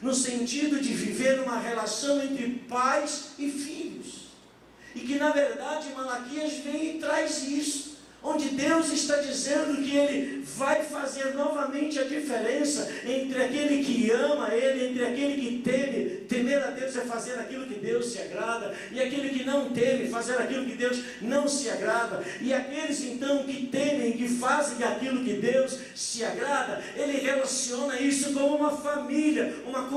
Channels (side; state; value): both; identical; correlation 1.00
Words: no sentido de viver uma relação entre pais e filhos. E que na verdade Malaquias vem e traz isso, onde Deus está dizendo que Ele vai fazer novamente a diferença entre aquele que ama Ele, entre aquele que teme. Temer a Deus é fazer aquilo que Deus se agrada, e aquele que não teme, fazer aquilo que Deus não se agrada. E aqueles então que temem, que fazem aquilo que Deus se agrada, Ele relaciona isso como uma família, uma